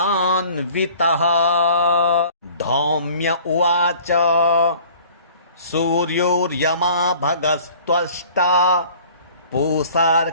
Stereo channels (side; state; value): both; inverted; correlation -0.49